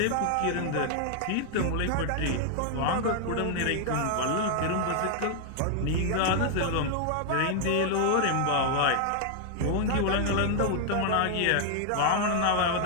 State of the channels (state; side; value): different; both; correlation 0.00